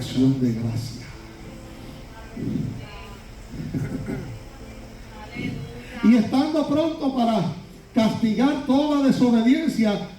de gracia. Y estando pronto para castigar toda desobediencia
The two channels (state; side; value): identical; both; correlation 1.00